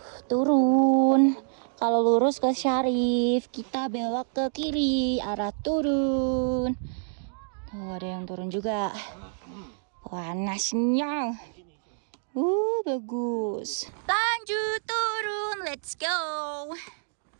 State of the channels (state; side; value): silent; left; digital silence